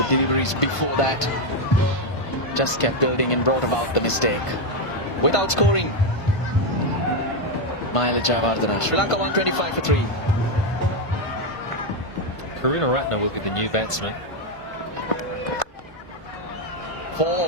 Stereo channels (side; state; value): right; late; 1.5 ms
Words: deliveries before that just kept building and brought about the mistake. Without scoring, Mahela Jayawardena. Sri Lanka 125 for 3. Karunaratne will be the new batsman.